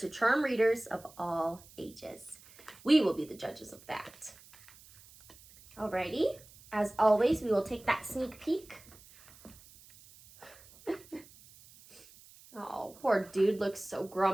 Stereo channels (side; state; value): right; noise; hiss, 23 dB below the sound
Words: charm readers of all ages. We will be the judges of that. Alrighty, as always, we will take that sneak peek. Oh, poor dude looks so